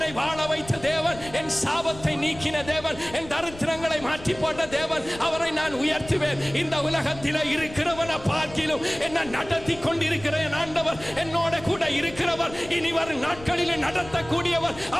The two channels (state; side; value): noise; left; rumble, 17 dB below the sound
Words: வாழ வைத்த தேவன், என் சாபத்தை நீக்கின தேவன், என் தரித்திரங்களை மாற்றி போட்ட தேவன். அவரை நான் உயர்த்துவேன். இந்த உலகத்தில் இருக்கிறவனை பார்க்கிலும் என்ன நடத்தி கொண்டிருக்கிறேன் ஆண்டவர், என்னோட கூட இருக்கிறவர், இனி வரும் நாட்களில் நடத்தக்கூடியவர்.